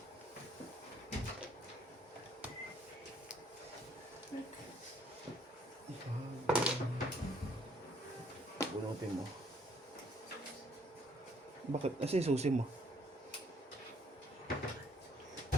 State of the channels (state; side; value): normal; both; correlation 0.65